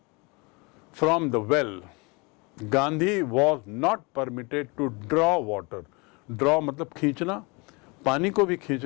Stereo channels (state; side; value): quieter; right; 28.5 dB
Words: from the well. Gandhi was not permitted to draw water. Draw मतलब खींचना, पानी को भी